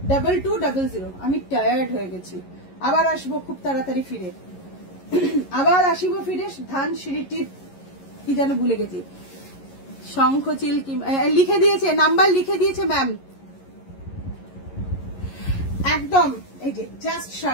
2200। আমি টায়ার্ড হয়ে গেছি, আবার আসবো খুব তাড়াতাড়ি ফিরে, আবার আসিব ফিরে। ধানসিঁড়িটির কি যেন ভুলে গেছি, শঙ্খচিল কি লিখে দিয়েছে, নাম্বার লিখে দিয়েছে ম্যাম। একদম এই যে জাস্ট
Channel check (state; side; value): late; right; 11 ms